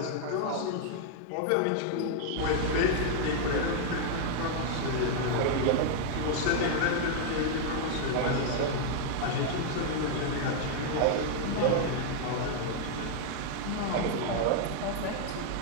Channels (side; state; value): both; different; correlation 0.00